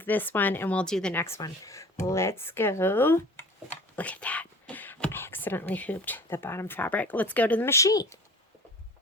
this one, and we'll do the next one. Let's go. Look at that. I accidentally hooped the bottom fabric. Let's go to the machine.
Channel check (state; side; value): normal; both; correlation 0.43